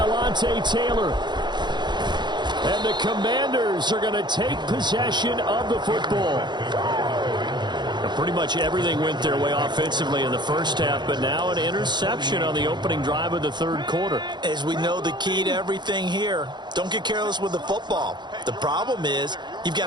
Taylor. And the Commanders are going to take possession of the football. Pretty much everything went their way offensively in the first half, but now an interception on the opening drive of the third quarter. As we know, the key to everything here, don't get careless with the football. The problem is you've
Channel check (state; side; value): late; left; 0.21 ms